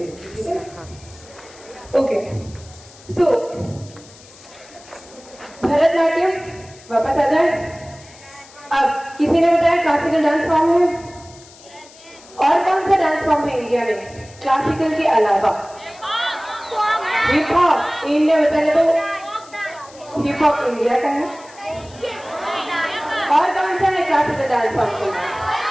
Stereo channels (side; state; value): left; noise; hiss, 22 dB below the sound